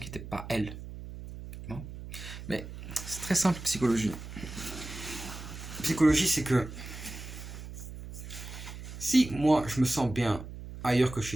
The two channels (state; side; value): noise; right; hum, 11 dB below the sound